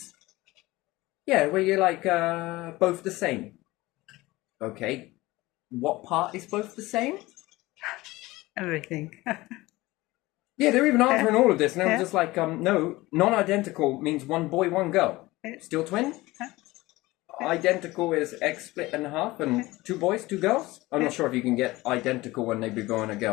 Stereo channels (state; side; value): quieter; right; 19.7 dB